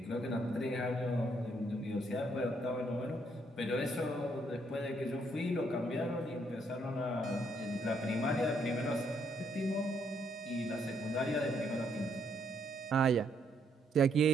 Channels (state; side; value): normal; both; correlation 0.72